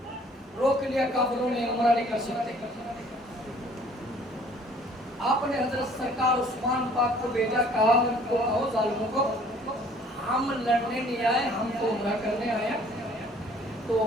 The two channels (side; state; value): both; normal; correlation 0.55